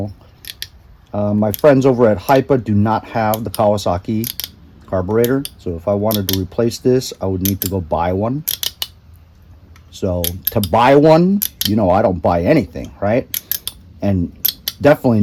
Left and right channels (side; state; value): both; identical; correlation 1.00